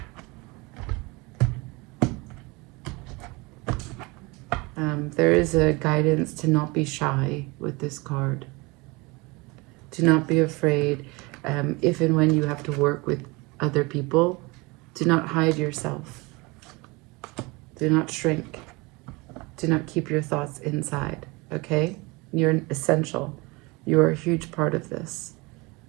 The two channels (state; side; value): quieter; left; 25.5 dB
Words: There is a guidance to not be shy with this card. To not be afraid. If and when you have to work with other people, do not hide yourself. Do not shrink. Do not keep your thoughts inside, okay? You're essential You're a huge part of this.